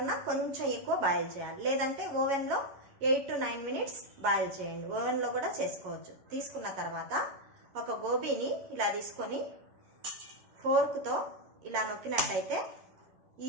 కొంచెం ఎక్కువ బాయిల్ చేయాలి. లేదంటే ఓవెన్లో 8 to 9 మినిట్స్ బాయిల్ చేయండి. ఓవెన్లో కూడా చేసుకోవచ్చు. తీసుకున్న తర్వాత ఒక గోబీని ఇలా తీసుకొని ఫోర్క్తో ఇలా నొక్కినట్టయితే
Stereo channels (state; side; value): late; left; 11 ms